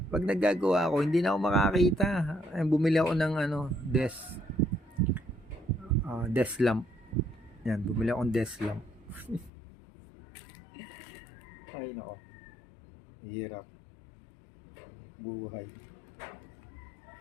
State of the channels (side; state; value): right; drops out; at 9.5 s